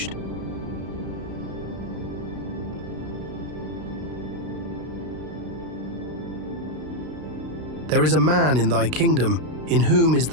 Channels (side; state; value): left; late; 32 ms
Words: There is a man in thy kingdom, in whom is